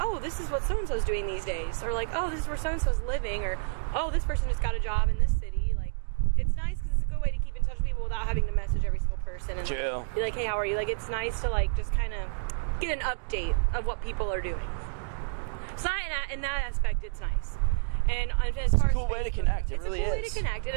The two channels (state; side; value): silent; left; digital silence